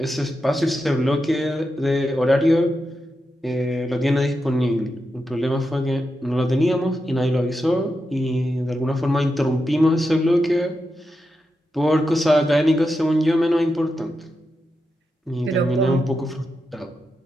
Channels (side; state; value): both; normal; correlation 0.87